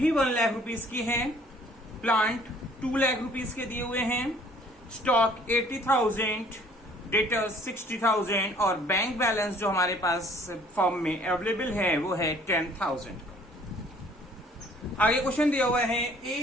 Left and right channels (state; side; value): normal; both; correlation 0.56